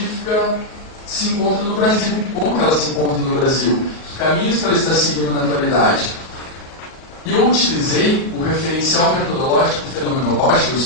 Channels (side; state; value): right; late; 38 ms